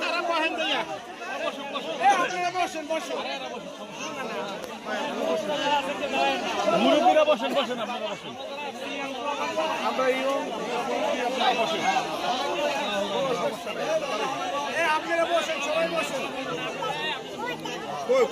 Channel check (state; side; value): identical; both; correlation 1.00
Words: মুরব্বীরা বসেন, বসেন আপনারা বসেন। আপনারা বসেন, সবাই বসেন।